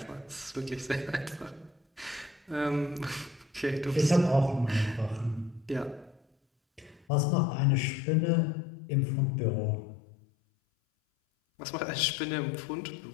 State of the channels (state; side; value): drops out; right; at 7.1 s